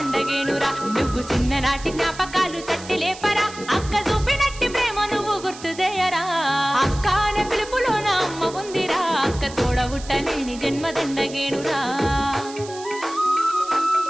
నువ్వు చిన్ననాటి జ్ఞాపకాలు తట్టి లేపరా, అక్క చూపినట్టి ప్రేమ నువ్వు గుర్తు చేయరా. అక్క అనే పిలుపులోన అమ్మ ఉందిరా, అక్క తోడ పుట్టలేని జన్మదండగేనురా.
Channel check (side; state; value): right; noise; hiss, 16 dB below the sound